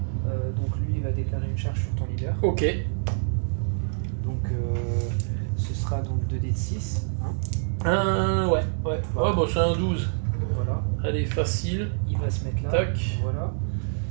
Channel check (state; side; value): silent; left; digital silence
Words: Donc lui, il va déclarer une charge sur ton leader. Ok. Donc ce sera donc 2d de 6. Hein. Ouais. Ouais, bon, c'est un 12. Voilà. Allez, facile. Il va se mettre là. Tac. Voilà.